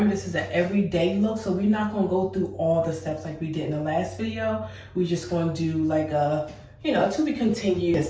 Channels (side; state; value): both; identical; correlation 1.00